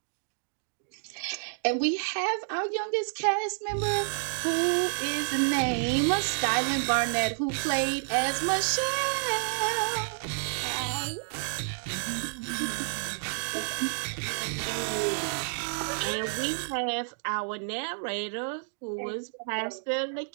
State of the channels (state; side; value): silent; left; digital silence